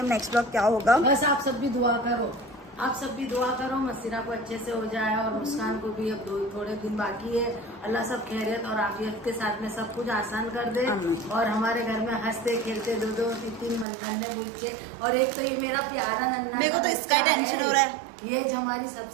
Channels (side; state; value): left; drops out; at 13.9 s